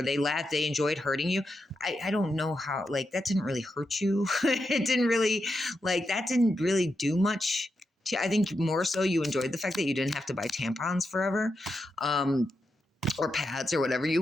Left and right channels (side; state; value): both; normal; correlation 0.86